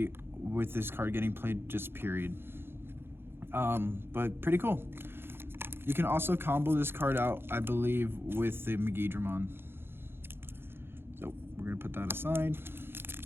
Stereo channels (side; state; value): left; late; 0.11 ms